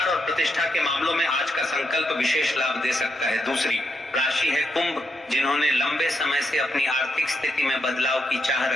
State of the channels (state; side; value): normal; both; correlation 0.81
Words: और प्रतिष्ठा के मामलों में आज का संकल्प विशेष लाभ दे सकता है। दूसरी राशि है कुंभ, जिन्होंने लंबे समय से अपनी आर्थिक स्थिति में बदलाव की चाह